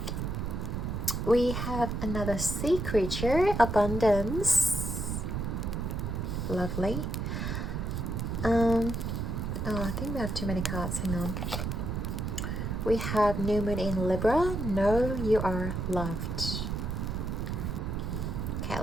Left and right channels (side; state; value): right; noise; rumble, 2 dB below the sound